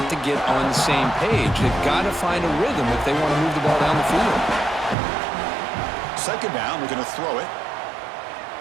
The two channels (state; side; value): drops out; left; at 5.0 s